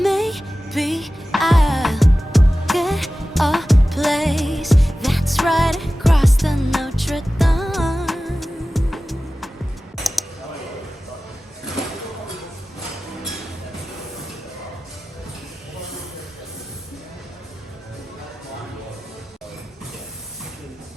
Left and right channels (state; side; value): normal; both; correlation 0.96